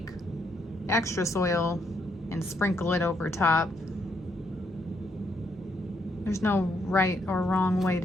extra soil and sprinkle it over top. There's no right or wrong way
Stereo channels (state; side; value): normal; both; correlation 0.75